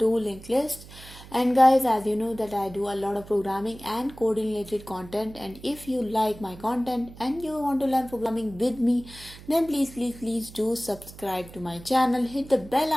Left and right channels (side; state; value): right; noise; hum, 18 dB below the sound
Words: linked lists. And guys, as you know that I do a lot of programming and coding related content, and if you like my content and you want to learn programming with me, then please do subscribe to my channel, hit the bell